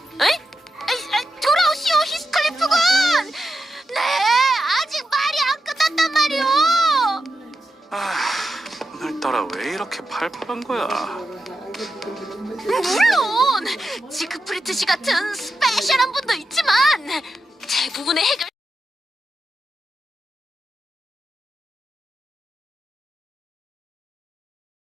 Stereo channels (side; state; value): both; normal; correlation 0.88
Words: 에이? 돌아오시오 히스클리프군. 네, 아직 말이 안 끝났단 말이오. 오늘따라 왜 이렇게 팔팔한 거야? 물론 지크프리트 씨 같은 스페셜한 분도 있지만 대부분의 해결